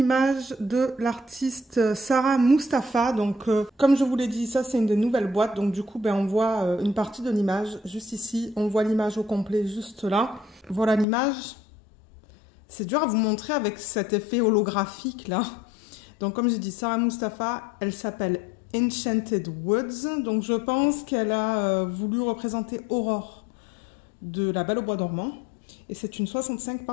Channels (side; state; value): right; drops out; at 11.1 s